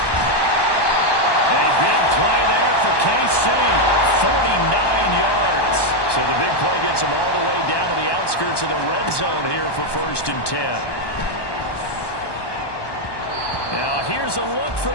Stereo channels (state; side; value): late; right; 1.2 ms